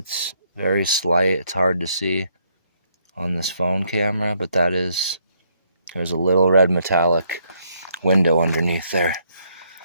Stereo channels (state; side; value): inverted; both; correlation -0.72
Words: very slight. It's hard to see on this phone camera, but there's a little red metallic window underneath there.